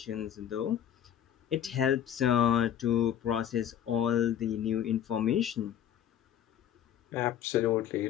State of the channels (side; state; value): right; quieter; 10.0 dB